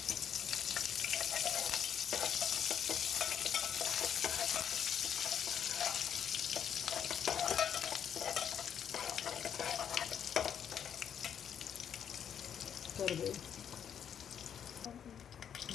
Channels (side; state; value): right; quieter; 8.6 dB